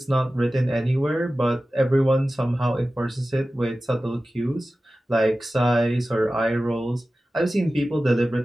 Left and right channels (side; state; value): both; normal; correlation 0.95